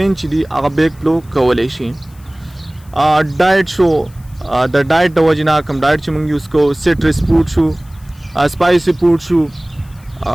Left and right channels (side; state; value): left; noise; hiss, 28 dB below the sound